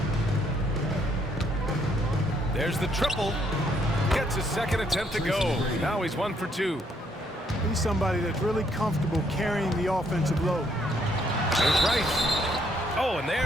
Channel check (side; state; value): both; normal; correlation 0.70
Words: There's the triple. Gets his second attempt to go. Now he's 1 for 2. He's somebody that's really comfortable carrying the offensive load. There's Rice. Oh, and